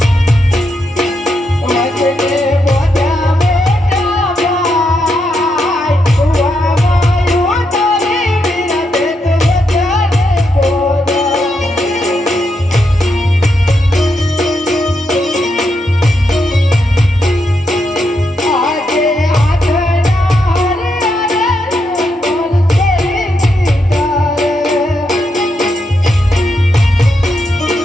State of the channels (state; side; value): normal; both; correlation 0.82